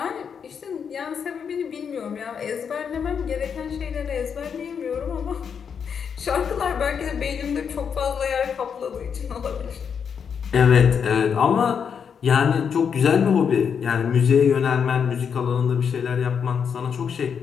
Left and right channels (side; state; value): right; quieter; 7.0 dB